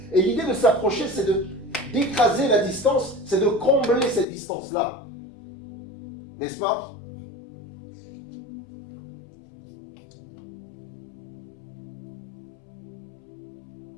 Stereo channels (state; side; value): drops out; right; at 4.2 s